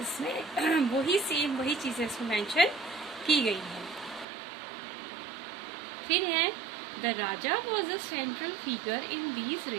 इसमें वही चीजें इसमें मेंशन की गई है। फिर है the Raja was a central figure in these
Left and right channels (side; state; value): left; drops out; at 4.2 s